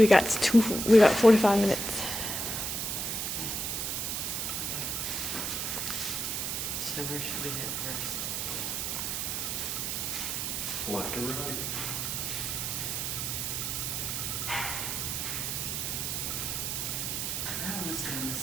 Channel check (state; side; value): noise; right; hiss, 1 dB below the sound